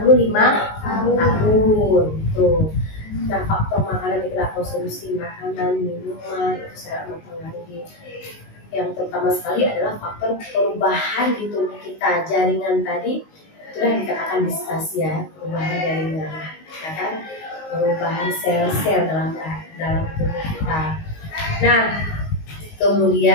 tahun. Tuh. Nah, faktor makanan kita konsumsi makanan, minuman itu sangat mempengaruhi. Yang terutama sekali adalah faktor perubahan di tubuh kita. Jaringan tadi itulah dikatakan distasia, perubahan jaringan, ya kan? Perubahan sel-sel dalam tubuh kita. Nah,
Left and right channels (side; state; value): right; late; 19 ms